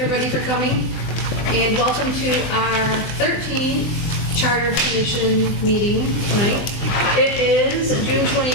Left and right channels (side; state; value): right; late; 20 ms